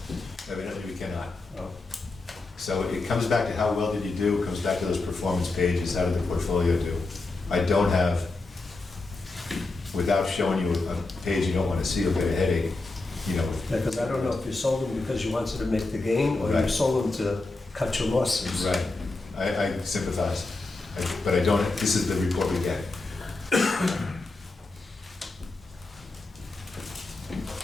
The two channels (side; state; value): right; quieter; 3.3 dB